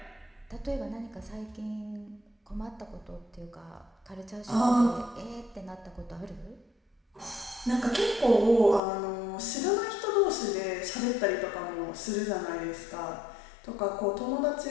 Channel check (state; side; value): drops out; right; at 8.8 s